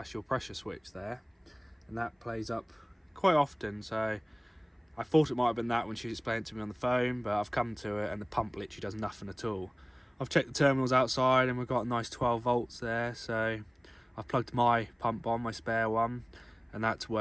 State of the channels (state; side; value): identical; both; correlation 1.00